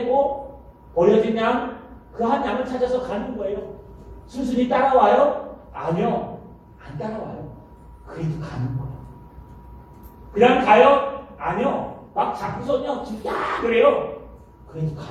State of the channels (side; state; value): both; identical; correlation 1.00